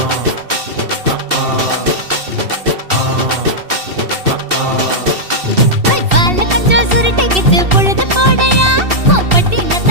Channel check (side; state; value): left; late; 2.7 ms